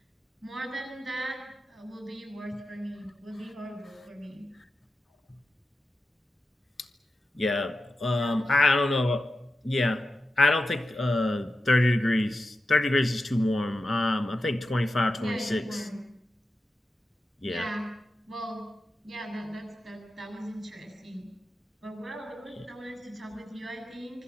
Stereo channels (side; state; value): both; normal; correlation 0.91